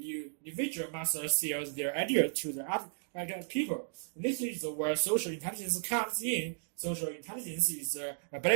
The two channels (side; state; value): left; silent; digital silence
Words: must sell their idea to the other people. This is where social intelligence comes in. Social intelligence is the